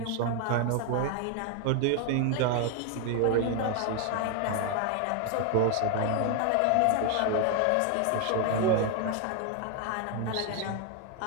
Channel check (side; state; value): both; different; correlation 0.00